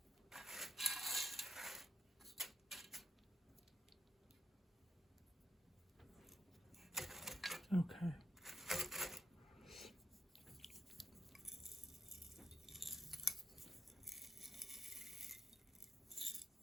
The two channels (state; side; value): normal; both; correlation 0.78